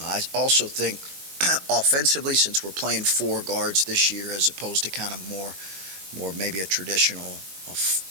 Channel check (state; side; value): late; left; 21 ms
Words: also think offensively, since we're playing four guards this year as opposed to kind of more maybe a traditional